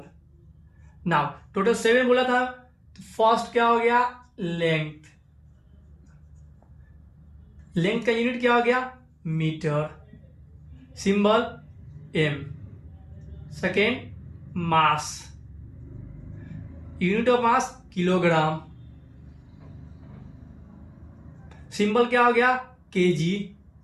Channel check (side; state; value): both; identical; correlation 1.00